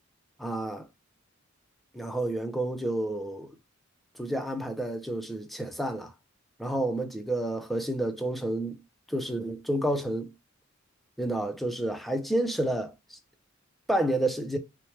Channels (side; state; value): both; normal; correlation 0.82